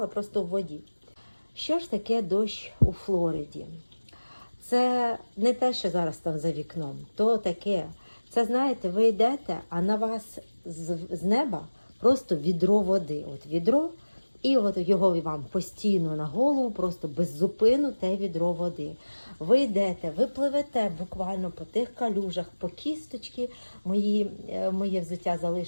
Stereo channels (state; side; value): inverted; both; correlation -1.00